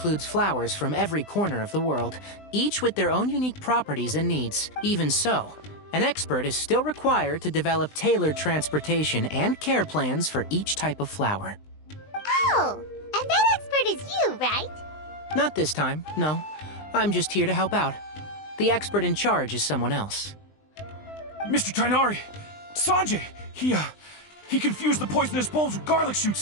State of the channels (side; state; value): right; late; 20 ms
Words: flowers from every corner of the world, each with their own unique properties and needs. Even so, an expert is still required to develop tailored transportation and care plans for each type of flower. Oh, and that expert is you, right? Not this time, no. I'm just here to help out. The expert in charge is someone else. Mr. Tainari! Sanjay! He confused the poisonous bulbs with garlic